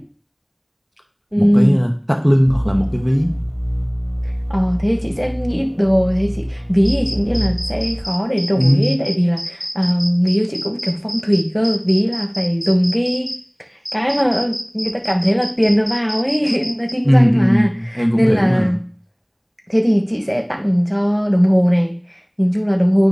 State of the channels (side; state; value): both; identical; correlation 1.00